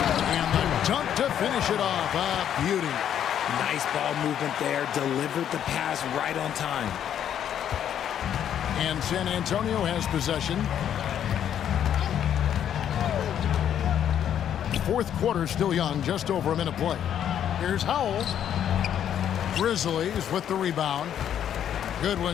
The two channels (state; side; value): quieter; right; 9.7 dB